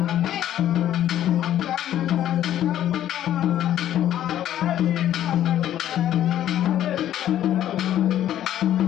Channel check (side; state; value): right; quieter; 11.8 dB